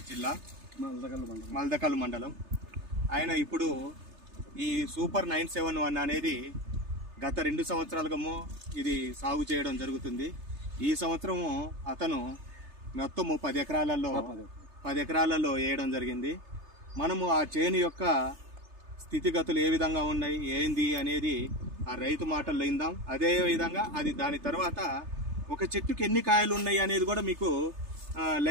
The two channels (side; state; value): left; late; 3.3 ms